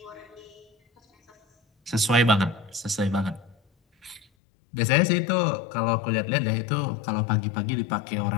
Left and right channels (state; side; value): drops out; right; at 4.2 s